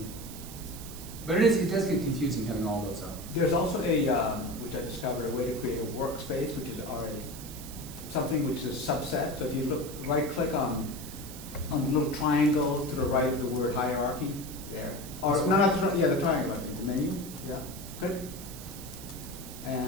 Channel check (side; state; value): right; noise; hiss, 13 dB below the sound